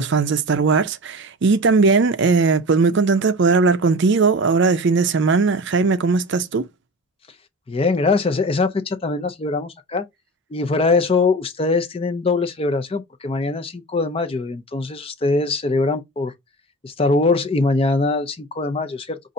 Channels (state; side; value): normal; both; correlation 0.32